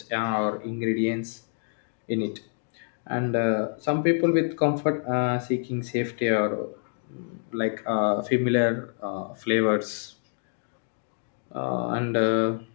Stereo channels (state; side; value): silent; right; digital silence